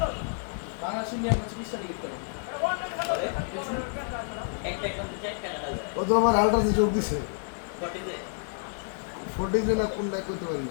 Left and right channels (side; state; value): right; silent; 58 dB below the other